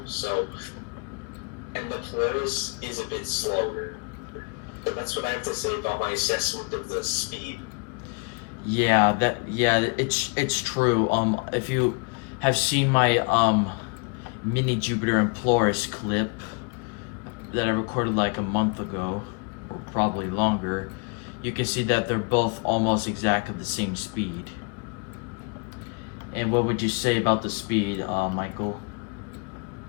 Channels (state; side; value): quieter; right; 35.5 dB